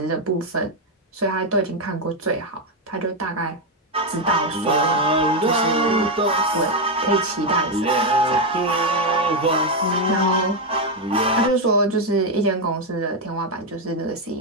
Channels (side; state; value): both; normal; correlation 0.05